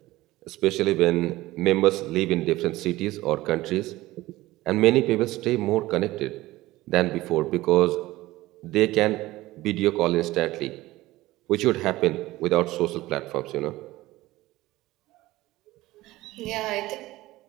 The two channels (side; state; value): left; quieter; 17.8 dB